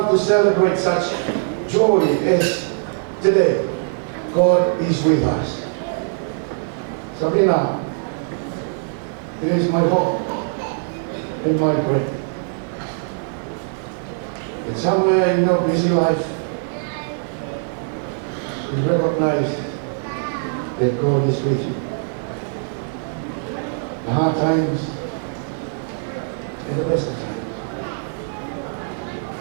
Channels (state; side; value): silent; left; 64 dB below the other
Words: to celebrate such joy as today, God is with us. Sabrina, it is my hope and my prayer that somewhere in your busy life you recognize that God is with you. The hard times and the best of times.